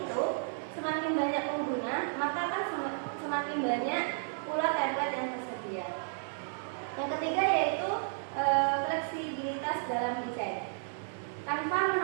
semakin banyak pengguna, maka akan semakin banyak pula template yang tersedia. Yang ketiga yaitu fleksibilitas dalam desain. Canva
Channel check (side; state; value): left; silent; digital silence